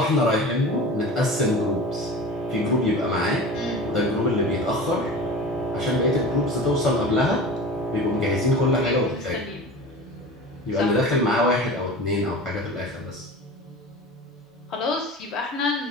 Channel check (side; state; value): both; normal; correlation 0.35